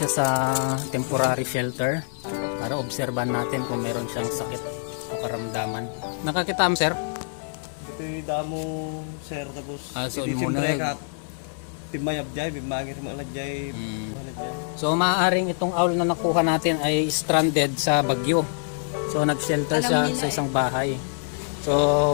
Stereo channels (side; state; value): right; silent; 61 dB below the other